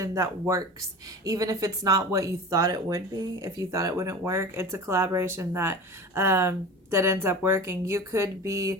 that works. Even if it's not what you thought it would be, if you thought it wouldn't work, it's a collaboration that that ends up working. You could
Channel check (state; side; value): normal; both; correlation 0.33